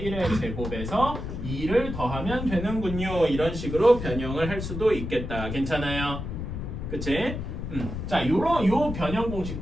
1의 제곱에서 2를 더하면 되는군요. 이런 식으로 변형을 할 수도 있겠다. 괜찮아요? 그치? 자, 요 변형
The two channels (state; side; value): noise; left; rumble, 6 dB below the sound